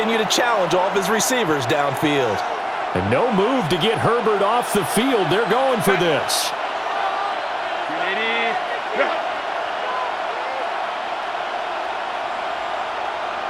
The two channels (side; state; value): both; identical; correlation 1.00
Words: to challenge all of his receivers downfield. And no move to get Herbert off the field. They're going for this.